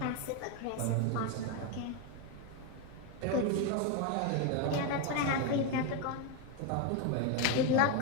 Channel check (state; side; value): different; both; correlation 0.02